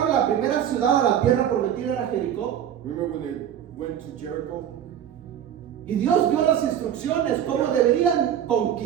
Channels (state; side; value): quieter; left; 9.8 dB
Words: a la primera ciudad a la tierra prometida, era Jericó? Remember when they went to Jericho? Y Dios dio las instrucciones cómo deberían